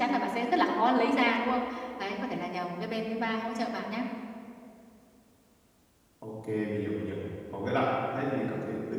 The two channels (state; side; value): identical; both; correlation 1.00